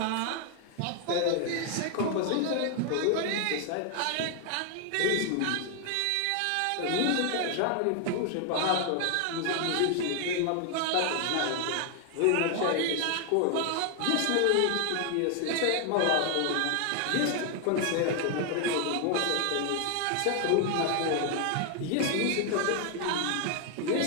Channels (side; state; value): both; different; correlation 0.00